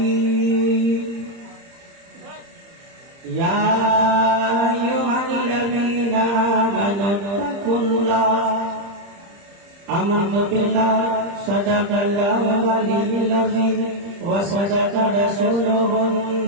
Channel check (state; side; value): late; left; 30 ms